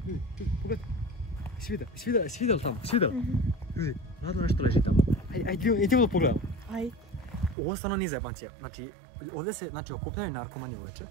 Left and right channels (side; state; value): left; drops out; at 7.6 s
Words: ljudi, pogledaj. Svidjeli tamo? Ljudi, ladno nešto leži tamo. Idemo da pogledamo. Ovo stvarno nije zajebancija. Znači, ovdje se okupljaju narkomani uveče.